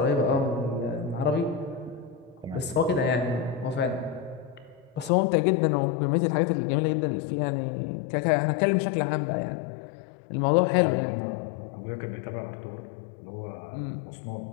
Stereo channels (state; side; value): drops out; right; at 5.1 s